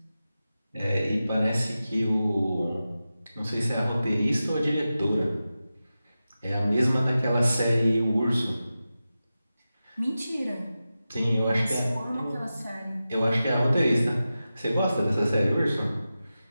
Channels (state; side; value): inverted; both; correlation -0.93